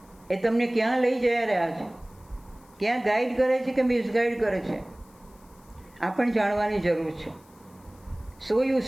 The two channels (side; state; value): left; noise; hiss, 29 dB below the sound